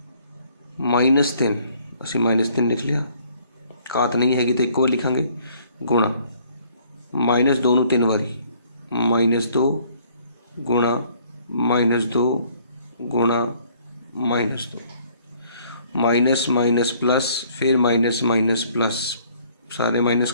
-3 असीं -3 लिख लिया, घात नहीं हैगी तो एक बार लिखांगे, गुणा -2 नूं 3 बारी, -2 गुणा -2 गुणा -2, माइनस माइनस प्लस, फिर माइनस माइनस प्लस, सारे माइनस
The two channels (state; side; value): inverted; both; correlation -0.61